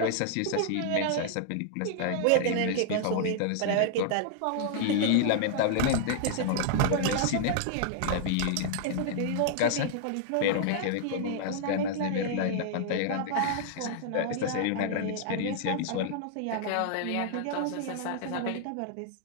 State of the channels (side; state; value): both; different; correlation -0.01